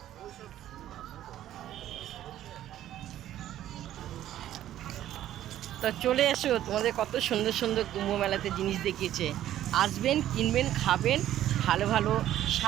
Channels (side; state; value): left; quieter; 12.4 dB